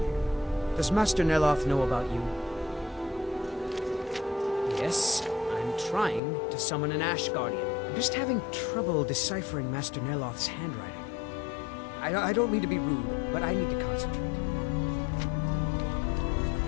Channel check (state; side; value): drops out; right; at 6.2 s